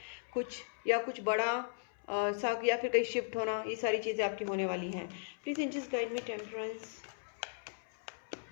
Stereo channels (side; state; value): right; silent; 53 dB below the other